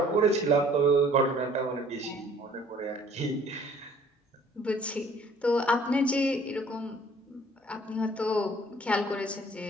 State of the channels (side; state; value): both; normal; correlation 0.56